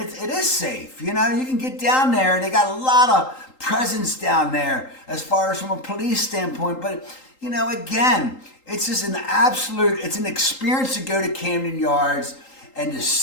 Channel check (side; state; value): right; late; 3.8 ms